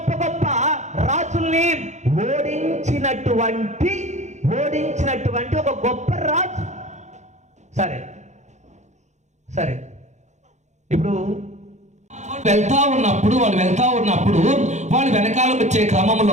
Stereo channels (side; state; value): left; late; 0.34 ms